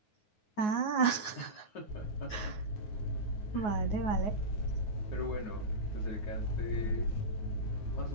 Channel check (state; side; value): late; right; 9.5 ms